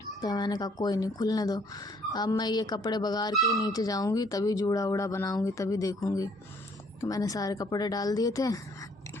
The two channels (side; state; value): both; normal; correlation 0.63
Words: तो मैंने कहा कोई नहीं, खुलने दो, अब मैं ये कपड़े बगाड़ के नीचे जाऊंगी तभी जूड़ा उड़ा बनाऊंगी, तभी देखूंगी। तो मैंने सारे कपड़े डाल दिए थे